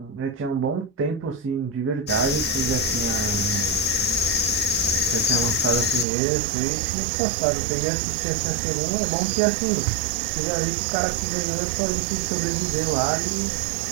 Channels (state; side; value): drops out; left; at 6.1 s